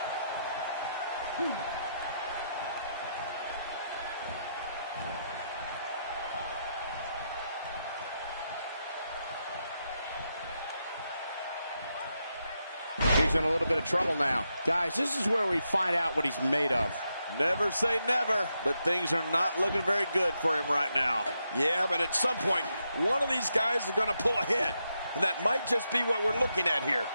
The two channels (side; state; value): both; inverted; correlation -0.83